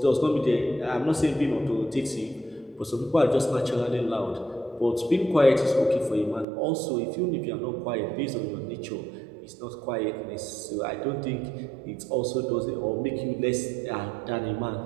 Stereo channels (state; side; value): drops out; left; at 6.5 s